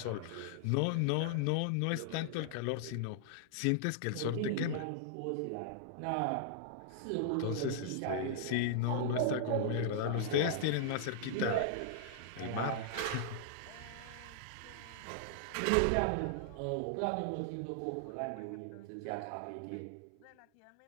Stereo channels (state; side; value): different; both; correlation -0.01